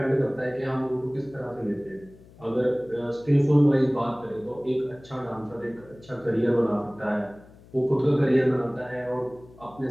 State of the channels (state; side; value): noise; left; hum, 23 dB below the sound